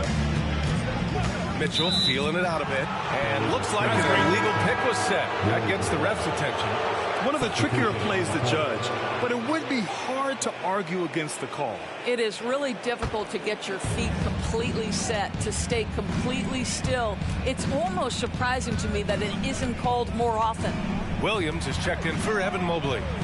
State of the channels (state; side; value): identical; both; correlation 1.00